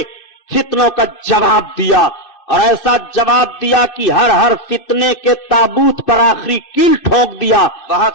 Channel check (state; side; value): late; right; 2.6 ms